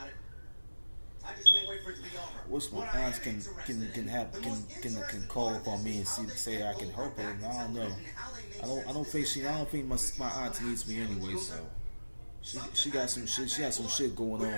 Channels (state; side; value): inverted; both; correlation -1.00